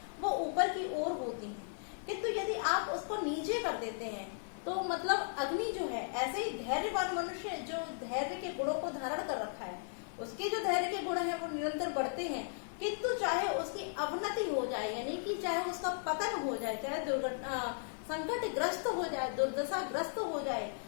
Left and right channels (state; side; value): silent; right; 54 dB below the other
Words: वो ऊपर की ओर होती हैं। किंतु यदि आप उसको नीचे कर देते हैं तो मतलब अग्नि जो है, ऐसे ही धैर्यवान मनुष्य जो धैर्य के गुणों को धारण कर रखा है, उसके जो धैर्य के गुण हैं वो निरंतर बढ़ते हैं, किंतु चाहे उसकी अवनति हो जाए, यानी कि चाहे उसका पतन हो जाए, चाहे दुर्घटना संकट ग्रस्त हो जाए, दुर्दशा ग्रस्त हो जाए,